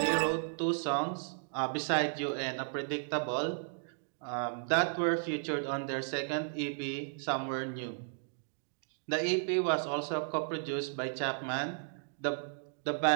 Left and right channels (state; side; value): silent; left; digital silence